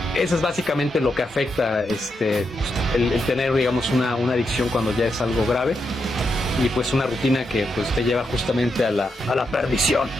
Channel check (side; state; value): both; normal; correlation 0.83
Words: Eso es básicamente lo que afecta el tener, digamos, una adicción cuando ya es algo grave, y pues una rutina que pues te lleva justamente a la perdición.